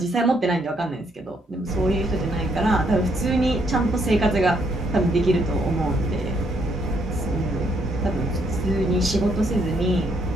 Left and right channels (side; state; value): both; normal; correlation 0.72